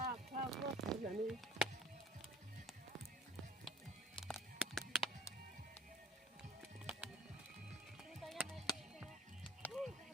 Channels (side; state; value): both; normal; correlation 0.52